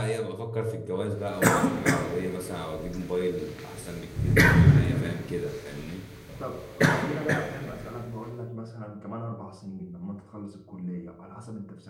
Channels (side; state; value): both; identical; correlation 1.00